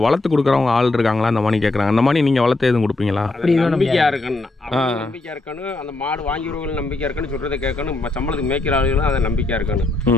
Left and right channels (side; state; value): right; quieter; 3.0 dB